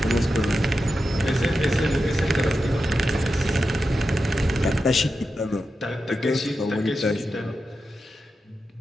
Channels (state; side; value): normal; both; correlation 0.89